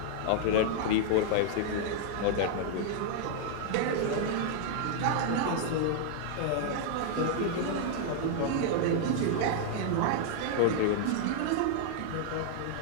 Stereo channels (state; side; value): different; both; correlation -0.01